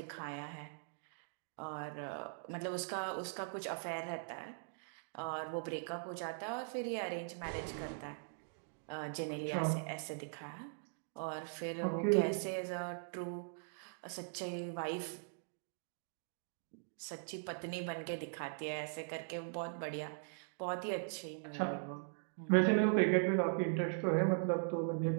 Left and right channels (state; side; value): silent; left; digital silence